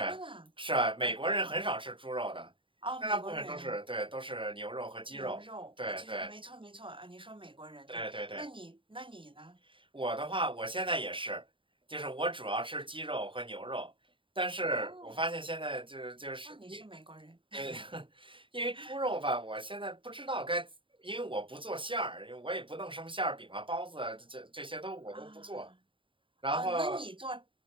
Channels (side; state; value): left; late; 0.25 ms